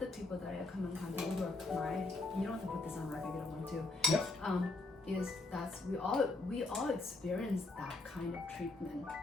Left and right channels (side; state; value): right; quieter; 3.1 dB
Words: people that I come in contact with who are Khmer, you don't have to put this on record, you don't want to. Yep. Is that's we all experience that kind of treatment.